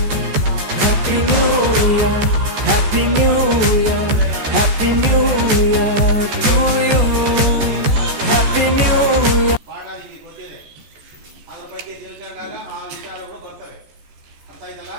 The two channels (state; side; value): late; left; 14 ms